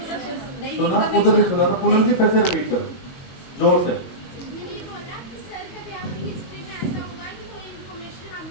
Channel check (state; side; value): late; right; 22 ms